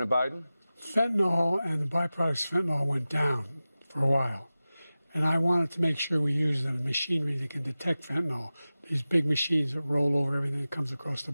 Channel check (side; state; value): both; inverted; correlation -0.96